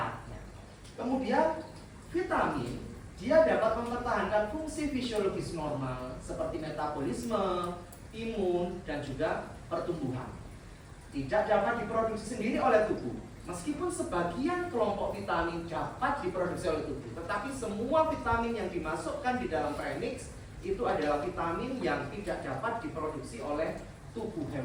Kemudian vitamin dia dapat mempertahankan fungsi fisiologis normal seperti metabolisme, imun dan juga pertumbuhan. Tidak dapat diproduksi sendiri oleh tubuh. Meskipun sebagian kelompok vitamin dapat diproduksi oleh tubuh, tetapi semua vitamin yang dimasukkan di dalam premix itu adalah vitamin yang tidak dapat diproduksi oleh tubuh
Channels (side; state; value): both; identical; correlation 1.00